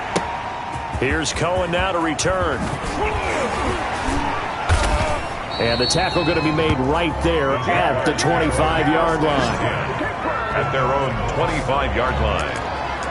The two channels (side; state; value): both; identical; correlation 1.00